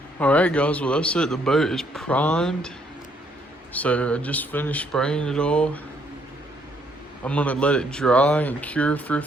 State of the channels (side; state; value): both; normal; correlation 0.69